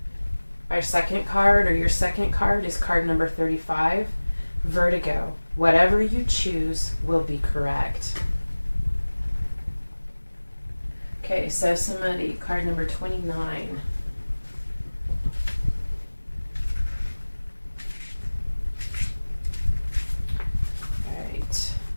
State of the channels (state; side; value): inverted; both; correlation -1.00